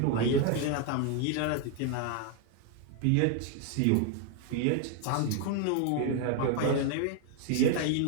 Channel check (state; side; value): different; both; correlation 0.01